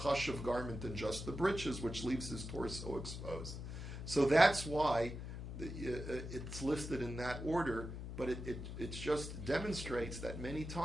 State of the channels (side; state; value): left; noise; hum, 7 dB below the sound